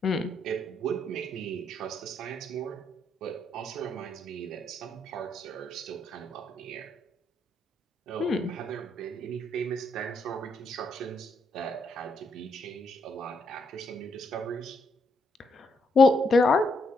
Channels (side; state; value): both; normal; correlation 0.76